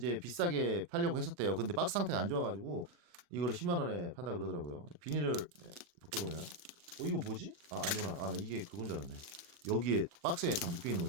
비싸게 팔려고 했었대요. 근데 박스 상태가 안 좋아가지고 이거를 10만 원에 판다 그러더라고요. 비닐을 벗겨보면 이거 뭐지? 아니구나. 나 이게 그건 줄 알았네. 여기에 박스에 다 묶여 있는 걸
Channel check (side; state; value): left; late; 40 ms